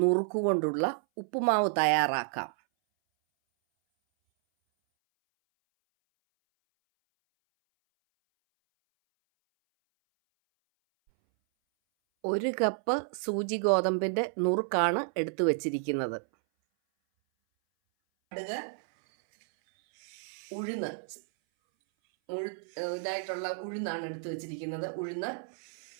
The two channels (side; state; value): left; silent; 57 dB below the other